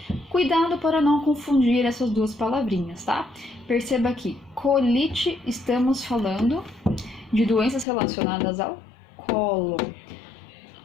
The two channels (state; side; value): drops out; right; at 7.9 s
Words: Cuidado para não confundir essas duas palavrinhas, tá? Perceba que colite, estamos falando de doenças relacionadas ao colo.